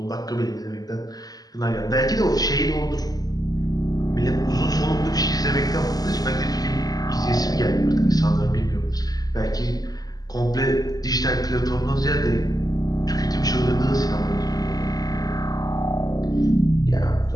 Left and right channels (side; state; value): right; late; 0.18 ms